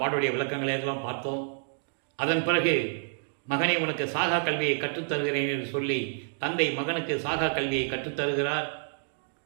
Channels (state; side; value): silent; left; digital silence